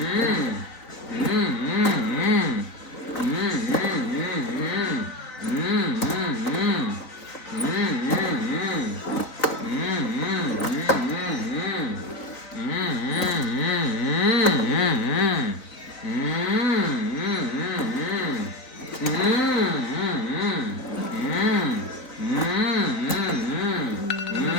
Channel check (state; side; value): late; right; 4.0 ms